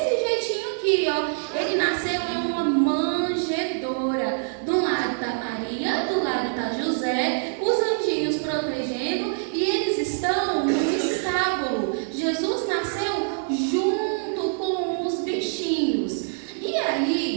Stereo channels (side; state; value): left; silent; 62 dB below the other